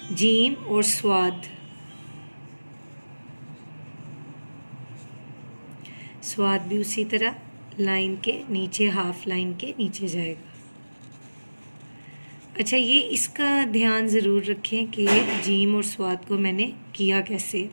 जीम और स्वाद। स्वाद भी उसी तरह लाइन के नीचे, हाफ लाइन के नीचे जाएगा। अच्छा, ये इसका ध्यान ज़रूर रखें कि जीम और स्वाद को मैंने किया कैसे।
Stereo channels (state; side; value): inverted; both; correlation -1.00